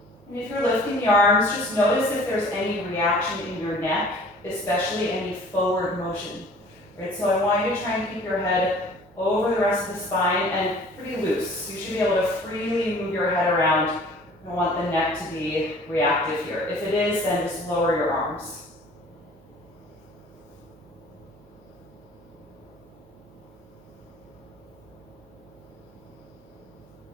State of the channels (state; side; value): noise; right; hum, 27 dB below the sound